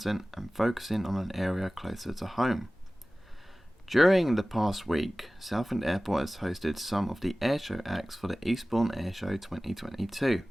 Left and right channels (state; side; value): normal; both; correlation 0.97